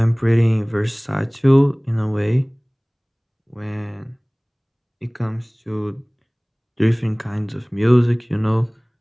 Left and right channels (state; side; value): identical; both; correlation 1.00